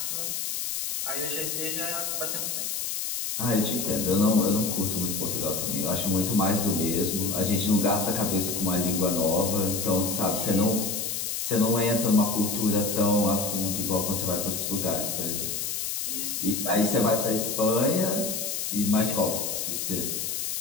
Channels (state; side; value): noise; left; hiss, 2 dB below the sound